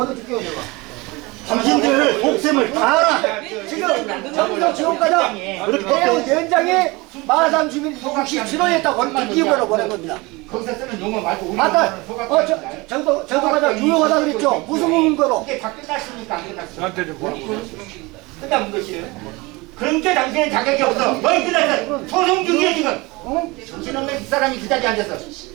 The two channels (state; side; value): quieter; left; 23.9 dB